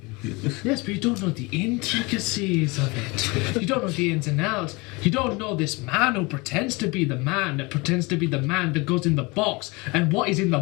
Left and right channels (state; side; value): quieter; right; 25.8 dB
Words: Yes, but you don't know the intricacies of it. You don't know the ins and outs. You don't know this man who pretends to be the man that pretends to be the man that goes in the box. And what is in the